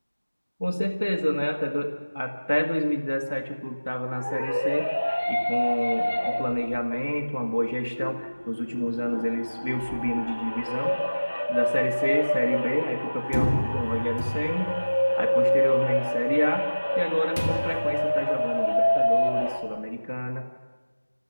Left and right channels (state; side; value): inverted; both; correlation -1.00